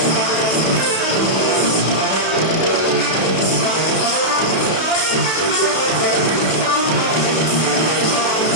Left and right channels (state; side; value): late; right; 32 ms